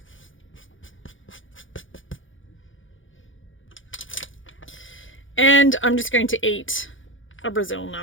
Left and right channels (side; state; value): right; late; 0.57 ms